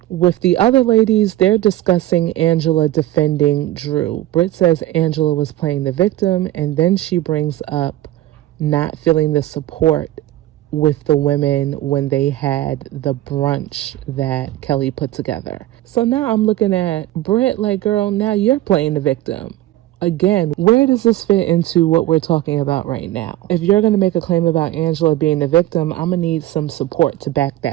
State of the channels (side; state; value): left; quieter; 14.8 dB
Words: With the other ladies, they're discussing Angela defending Drew. Britt says Angela was playing the victim, and then she brings up not feeling the support with the women when they had the brunch that Kelly put together. So now I'm looking at Britt like, girl, now you're playing the victim. Again, where does this fit into what we're talking about right now? If you're going to make a claim about Angela being the victim, I'm going to need some support to back